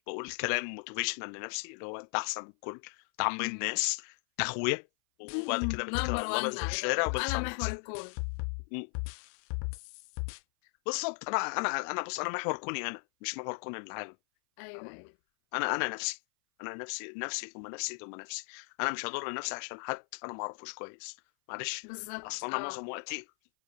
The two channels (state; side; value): silent; right; 54 dB below the other